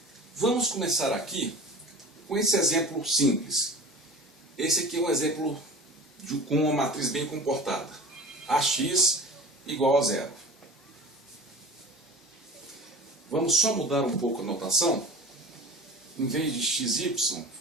vamos começar aqui com esse exemplo simples. Esse aqui é um exemplo com uma matriz bem comportada. Ax igual a zero. Vamos só mudar um pouco a notação. Em vez de xy,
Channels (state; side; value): normal; both; correlation 0.38